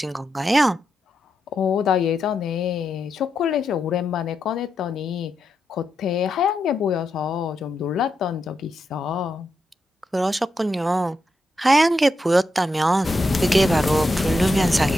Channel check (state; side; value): normal; both; correlation 0.85